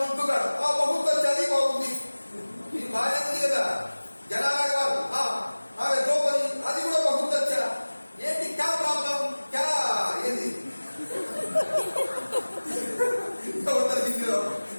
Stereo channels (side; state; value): both; inverted; correlation -1.00